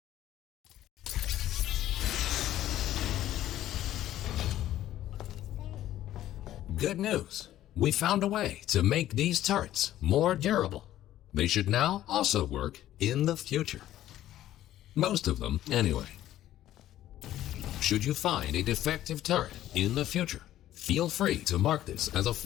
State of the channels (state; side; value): quieter; right; 13.2 dB